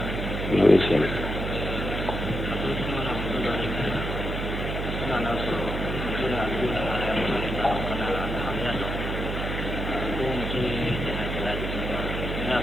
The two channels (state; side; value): noise; right; hum, 3 dB below the sound